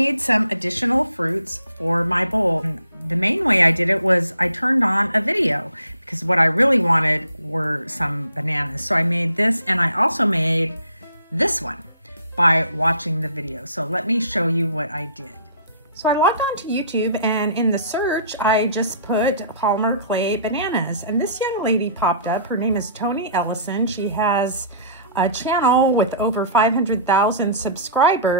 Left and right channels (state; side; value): inverted; both; correlation -0.53